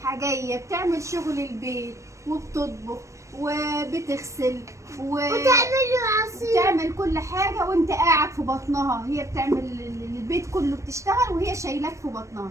جاية، بتعمل شغل البيت وبتطبخ وبتغسل وتعمل كل حاجة وانت قاعد في بطنها. هي بتعمل البيت كله، بتشتغل وهي شايلاك في بطنها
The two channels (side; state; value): left; late; 0.15 ms